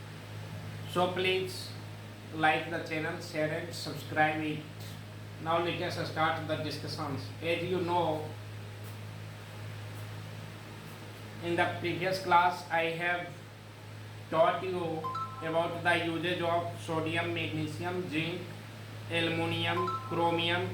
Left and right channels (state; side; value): identical; both; correlation 1.00